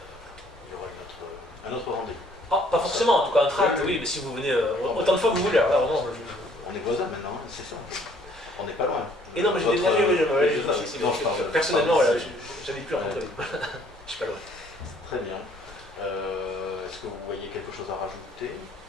y aura un autre rendez-vous. Ah, pas forcément, en tout cas un tract, oui, mais si vous venez autant de fois que vous voulez. Alors, vraiment, on est voisins maintenant, c'est ça. On n'est pas loin. Et non, mais j'ai déménagé, personnellement, j'habite plus à Montréal. Je suis pas loin. Très bien. Est-ce que vous voyez quelque chose à rajouter?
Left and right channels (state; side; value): normal; both; correlation 0.60